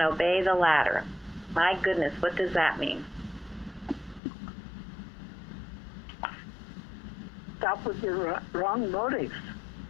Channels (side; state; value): right; drops out; at 4.2 s